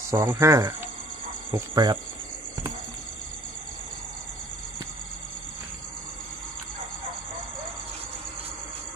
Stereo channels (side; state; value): both; normal; correlation 0.54